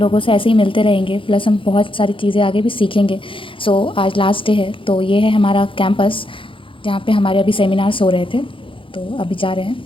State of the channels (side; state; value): right; late; 0.25 ms